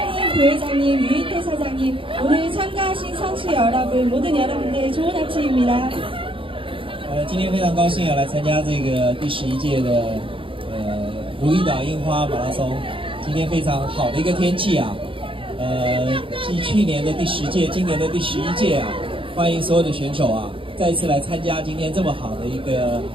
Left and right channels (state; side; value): late; left; 0.25 ms